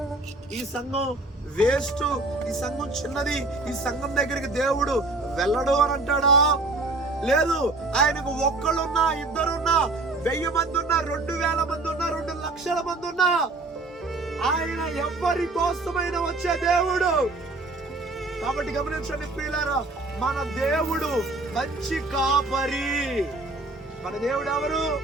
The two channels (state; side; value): quieter; left; 3.2 dB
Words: ఈ సంఘం వేస్ట్, ఈ సంఘం చిన్నది, ఈ సంఘం దగ్గరికి దేవుడు వెళ్ళడు అని అంటాడా? లేదు. ఆయనకు ఒక్కళ్ళున్నా, ఇద్దరున్నా, 1000 మంది ఉన్నా, 2000 మంది ఉన్నా, 2 లక్షల మంది ఉన్నా, ఆయన ఎవరి కోసమైన వచ్చే దేవుడు. కాబట్టి గమనించండి ప్రియులారా, మన దేవుడు మంచి కాపరి. మన దేవుడు ఎవరు?